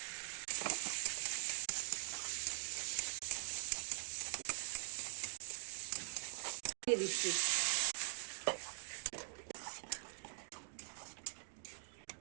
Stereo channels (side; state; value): left; silent; digital silence